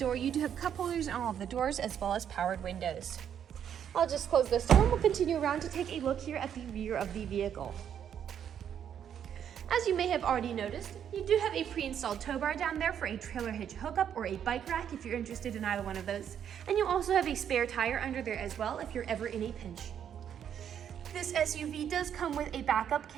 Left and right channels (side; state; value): left; quieter; 9.0 dB